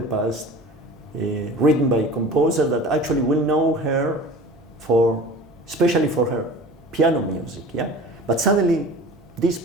past, written by a composer that actually will know her especially for her piano music. Yeah, but suddenly this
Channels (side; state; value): right; noise; hum, 28 dB below the sound